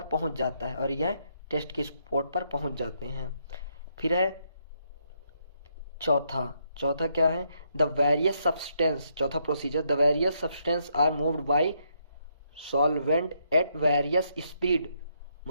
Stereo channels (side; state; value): both; inverted; correlation -0.76